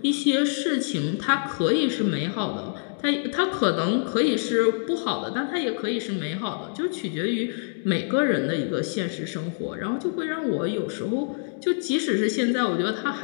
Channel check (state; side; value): silent; right; digital silence